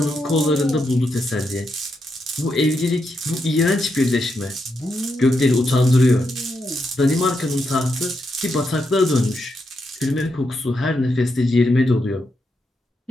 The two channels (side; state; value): both; normal; correlation 0.83